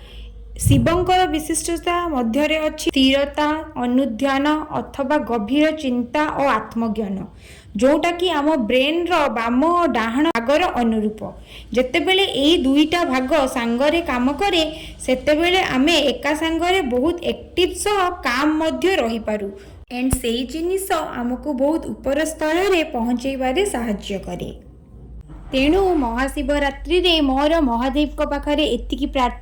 शिवंकर विशिष्टता मध्यरे अछि स्थिरता अनुध्यान अथवा गभीर चिंता और आत्मज्ञान जोटा कि आम ब्रेन रो बाम और डाहाण भागर अनुरूप। जेतेबेले एई दुईटा भाग सांगरे काम करे सेतेबेले आमे एका सांगरे बहुत एक्टिव सह काम मध्य रही पारू एंड सेई जिनिस आमको बहुत ऊपर स्तर रे पहुंचेबारे सहाय्य करे। तेणु महाशिवरात्रि रे मोर महादेव को पाखरे एतिकी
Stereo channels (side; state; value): both; identical; correlation 1.00